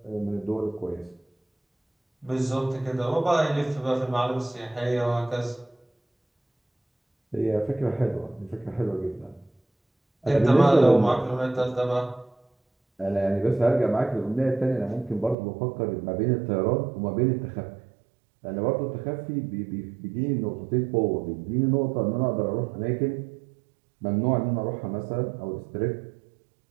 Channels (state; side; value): drops out; left; at 15.4 s